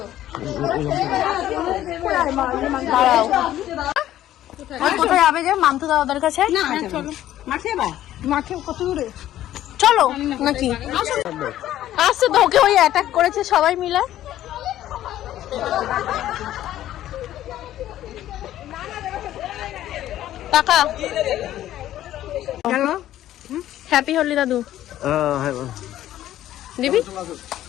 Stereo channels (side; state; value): right; quieter; 13.0 dB